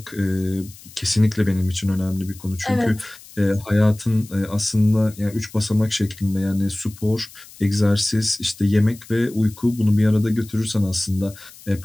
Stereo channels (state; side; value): noise; left; hiss, 20 dB below the sound